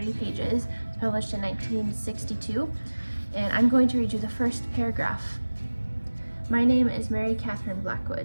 pages. It's published in 1962, and I'm going to read you the first paragraph. My name is Mary Catherine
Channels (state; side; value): inverted; both; correlation -1.00